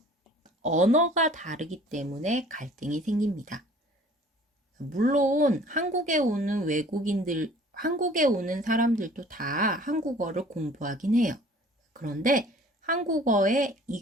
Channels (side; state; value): both; normal; correlation 0.51